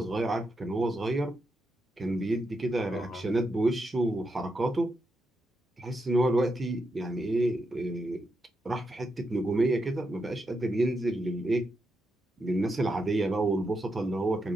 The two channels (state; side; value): normal; both; correlation 0.84